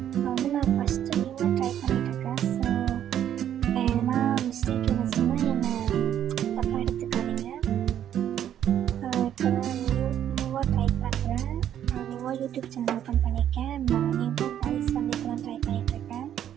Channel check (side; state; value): left; quieter; 10.4 dB